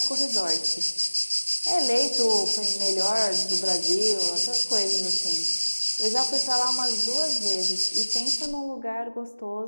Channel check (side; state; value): both; inverted; correlation -1.00